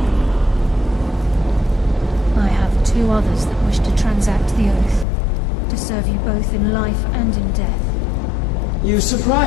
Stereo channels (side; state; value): right; drops out; at 5.1 s